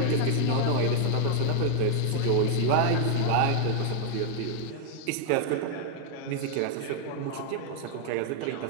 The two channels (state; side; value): different; both; correlation 0.00